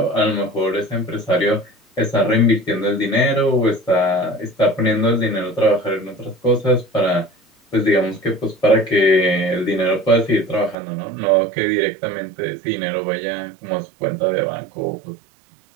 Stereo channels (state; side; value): drops out; left; at 10.8 s